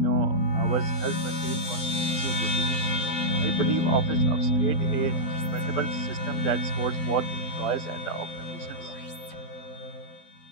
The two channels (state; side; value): late; right; 12 ms